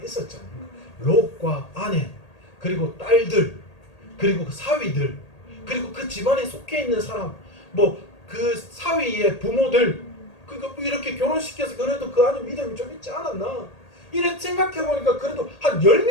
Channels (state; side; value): late; right; 1.8 ms